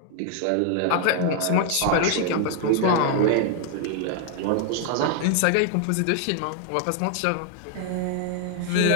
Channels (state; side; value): different; both; correlation 0.00